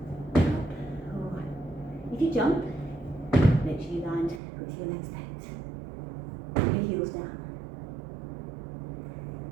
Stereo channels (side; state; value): left; drops out; at 4.4 s